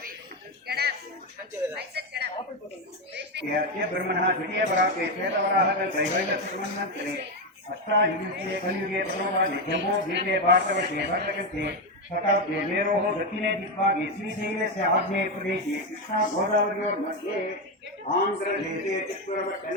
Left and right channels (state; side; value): normal; both; correlation 0.10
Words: ब्रह्मणः द्वितीय पराके श्वेतवराहः त्रैवैलक्ष्मन्वन्तरे अष्टायुगे कलियुगे प्रभवादि जम्बो द्वीपे भारतवर्षे भरतकल्पे शताब्दे मेरोः दक्षिणे दिग्भागे श्रीशैलस्य आग्नेये प्रदेशे कृष्णा गोदावर्योर्मध्ये आन्ध्रदेशे